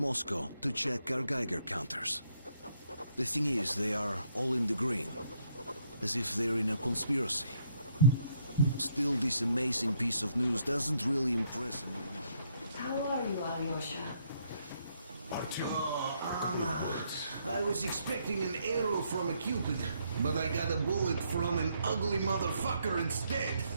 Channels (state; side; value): inverted; both; correlation -0.72